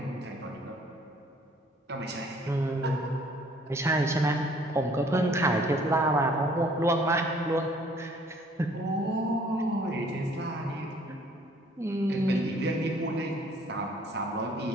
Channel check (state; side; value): normal; both; correlation 0.58